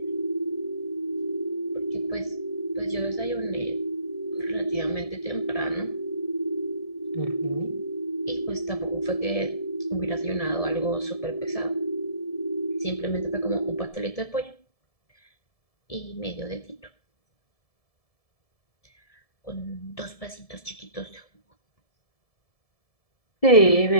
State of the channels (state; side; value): late; right; 1.7 ms